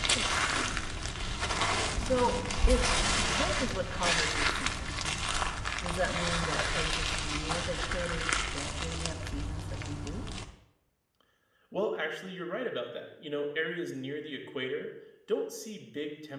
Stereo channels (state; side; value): identical; both; correlation 1.00